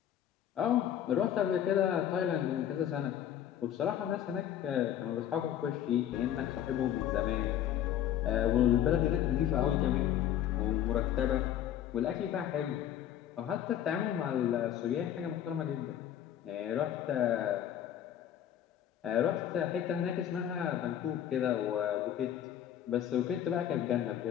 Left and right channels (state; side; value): quieter; right; 10.6 dB